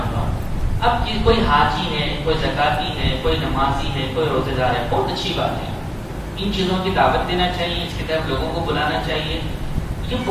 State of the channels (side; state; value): both; identical; correlation 1.00